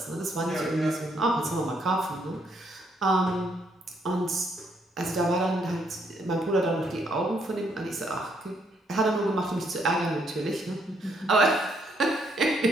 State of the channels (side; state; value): both; normal; correlation 0.72